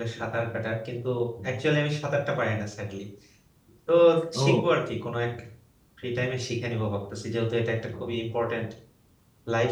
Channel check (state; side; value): identical; both; correlation 1.00